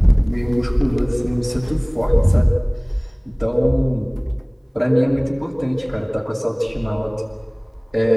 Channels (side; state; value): both; identical; correlation 1.00